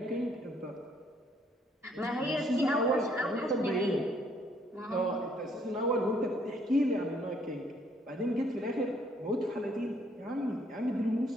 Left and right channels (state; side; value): normal; both; correlation 0.66